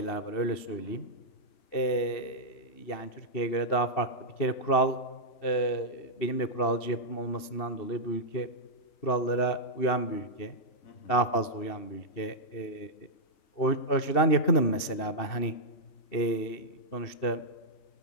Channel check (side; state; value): right; late; 2.7 ms